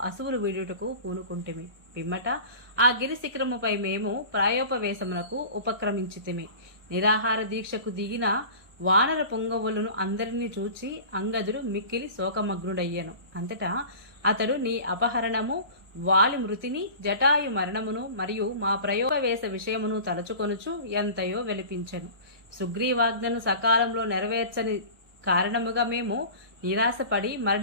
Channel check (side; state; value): left; late; 1.2 ms